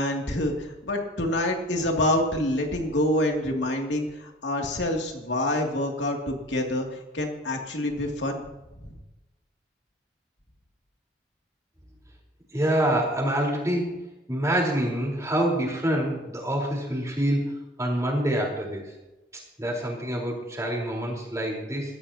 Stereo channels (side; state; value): both; normal; correlation 0.48